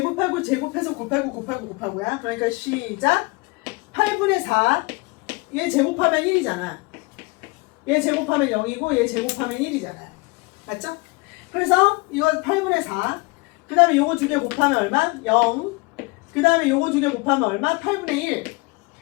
곱하고야. 그러니까 시작. 8분의 4. 얘 제곱하면 1이잖아. 얘 제곱하면 0이고 얘 제곱하면 1이잖아. 맞죠? 그래서 이거 8분의 4. 그 다음에 요거 두 개 곱하면 얼마? 0. 그 다음에 요거 두 개 곱하면 얼마? 8분의 1.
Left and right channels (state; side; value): quieter; right; 26.4 dB